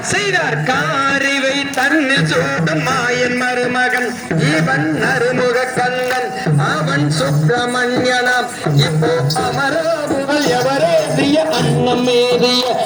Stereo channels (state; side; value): identical; both; correlation 1.00